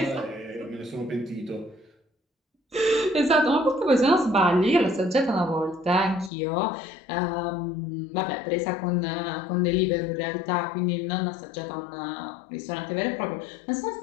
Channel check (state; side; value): drops out; right; at 6.3 s